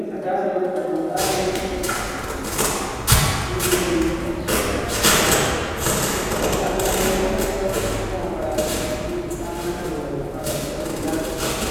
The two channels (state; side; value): identical; both; correlation 1.00